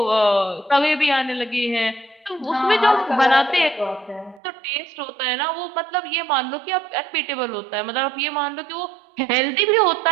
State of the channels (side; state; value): left; drops out; at 4.4 s